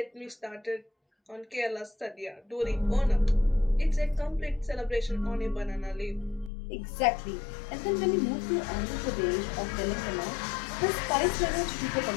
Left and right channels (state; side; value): drops out; right; at 6.5 s